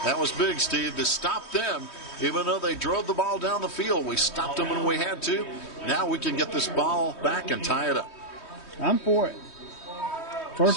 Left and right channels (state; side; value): late; right; 3.2 ms